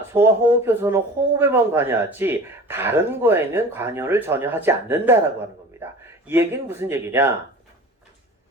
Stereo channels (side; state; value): both; normal; correlation 0.39